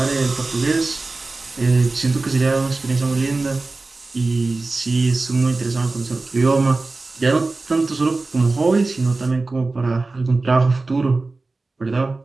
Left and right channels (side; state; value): left; quieter; 3.5 dB